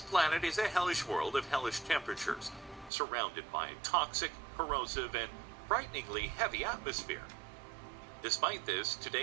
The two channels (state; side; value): drops out; left; at 2.9 s